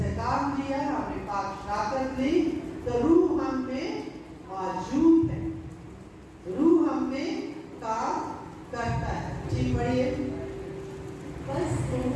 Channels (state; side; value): identical; both; correlation 1.00